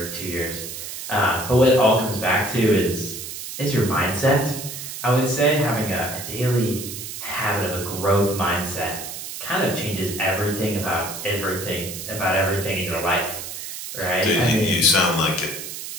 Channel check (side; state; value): right; noise; hiss, 8 dB below the sound